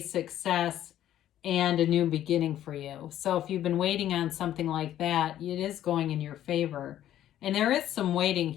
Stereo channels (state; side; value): quieter; right; 12.0 dB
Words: and a new beginning for you. So if you've been waiting on something like that, it is going in your favor. And there is some waiting